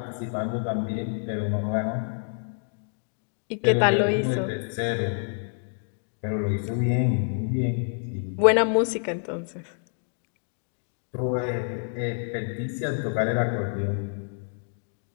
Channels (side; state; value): right; silent; 60 dB below the other